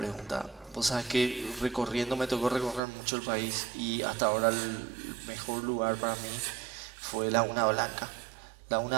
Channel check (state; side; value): drops out; left; at 2.8 s